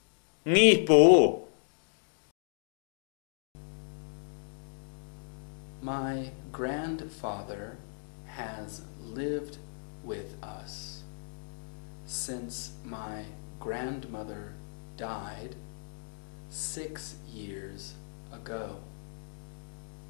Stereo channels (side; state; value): right; silent; 55 dB below the other